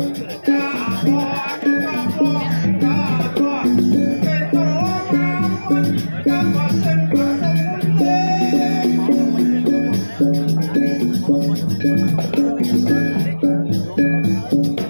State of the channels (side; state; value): both; inverted; correlation -1.00